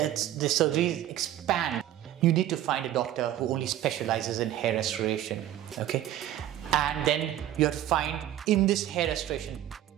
surgeries expand. You need to find a doctor who only specializes in hair restoration, okay? And then you have to find, in this hair restoration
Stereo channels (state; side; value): quieter; left; 12.5 dB